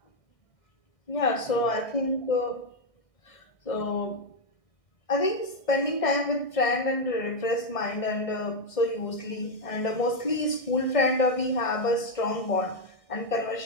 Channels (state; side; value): late; right; 1.6 ms